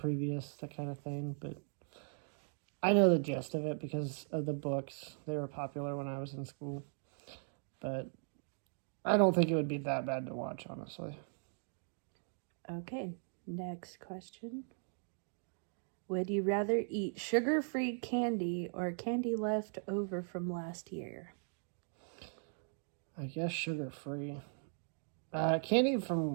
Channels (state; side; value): silent; left; 52 dB below the other